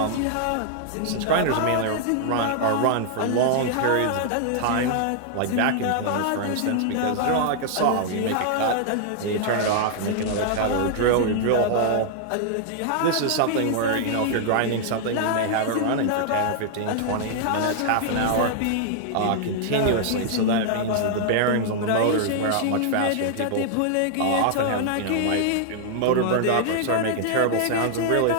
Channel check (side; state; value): both; different; correlation -0.01